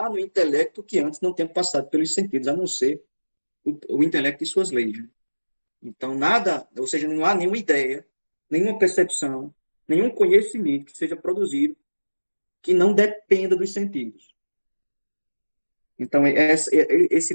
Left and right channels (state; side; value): inverted; both; correlation -1.00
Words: no intelecto que antes não tenha passado pelos sentidos, a não ser o intelecto e suas leis. Então, nada, ou seja, não há nenhuma ideia, nenhuma percepção, nenhum conhecimento que seja produzido que não dependa dos sentidos. Então, esse